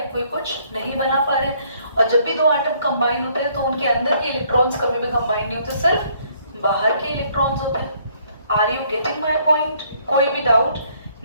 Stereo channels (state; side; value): inverted; both; correlation -0.65